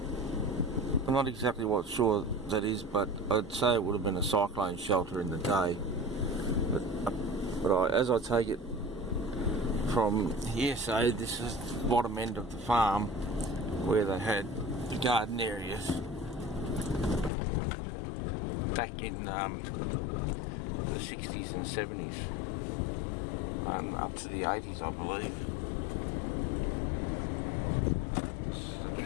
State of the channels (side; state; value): right; drops out; at 17.3 s